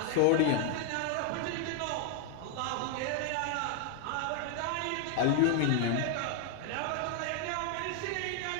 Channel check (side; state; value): both; different; correlation 0.00